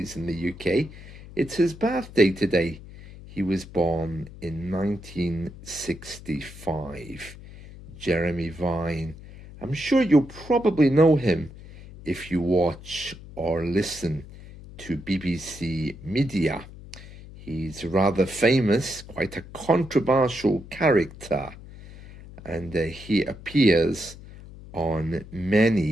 in the UK. It's his birthday today. He was born in 1965. Jeremy Vine. I'm sure you'll probably know him if you watch or listen to BBC Media. He's rather famous, quite a controversial character, and he appears on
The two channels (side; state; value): left; noise; hum, 17 dB below the sound